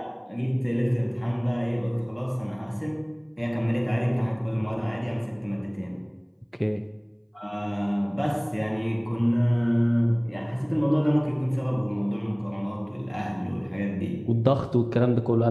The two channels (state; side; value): identical; both; correlation 1.00